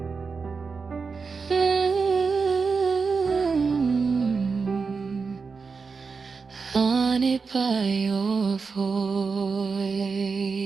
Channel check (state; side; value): quieter; left; 4.9 dB